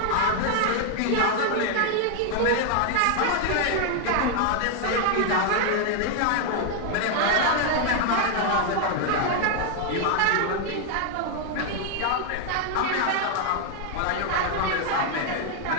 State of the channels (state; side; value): different; both; correlation 0.00